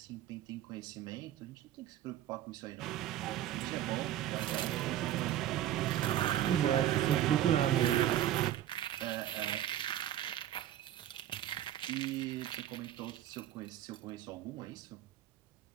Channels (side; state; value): left; quieter; 12.2 dB